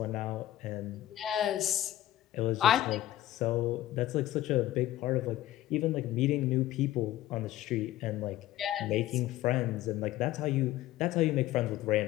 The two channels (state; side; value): quieter; right; 14.3 dB